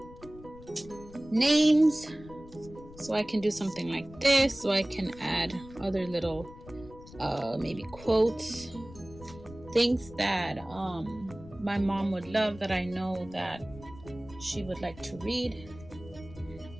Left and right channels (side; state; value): left; noise; rumble, 18 dB below the sound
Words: names, so I can do something like this, so I can add other little maybe quotes, things that my mom would love, that I know that she would like to read.